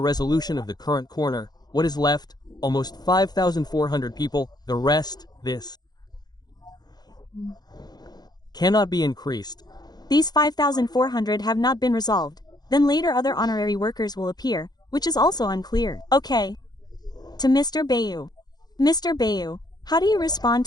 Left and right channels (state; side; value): late; right; 0.19 ms